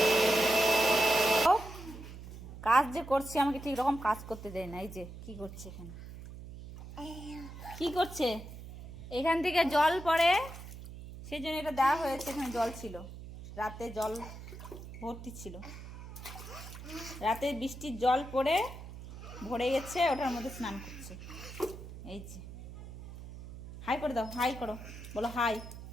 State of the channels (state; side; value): noise; right; hum, 13 dB below the sound